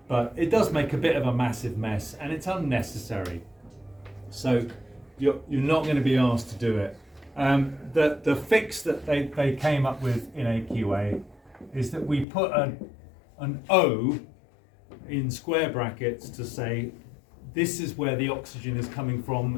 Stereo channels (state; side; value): drops out; right; at 12.2 s